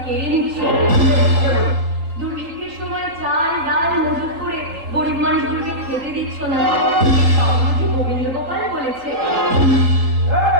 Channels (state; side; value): late; left; 3.8 ms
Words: কেড়ে নিচ্ছ। দুর্ভিক্ষের সময় চাল ডাল মজুত করে গরিব মানুষগুলোকে খেতে দিচ্ছ না। গোবিন্দ গোপাল বলেছে।